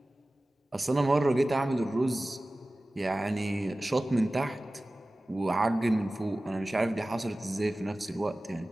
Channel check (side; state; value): both; normal; correlation 0.97